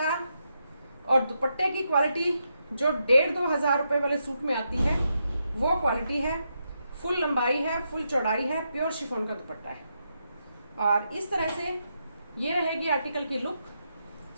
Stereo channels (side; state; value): both; inverted; correlation -0.83